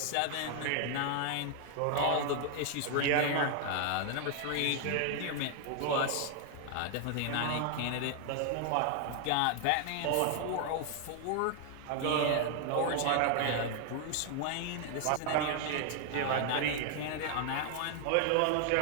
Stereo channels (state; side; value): different; both; correlation 0.00